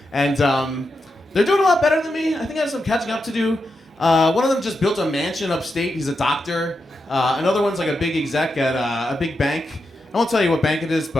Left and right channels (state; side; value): normal; both; correlation 0.87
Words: And they're doing a lot better than me. I think I have some catching up to do. One of them just built a mansion upstate. He's a doctor. Another one's like a big exec at a big bank. I won't tell you what bank it is,